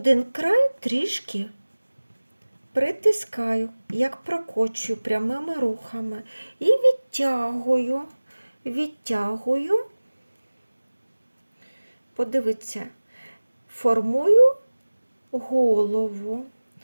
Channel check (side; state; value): both; inverted; correlation -1.00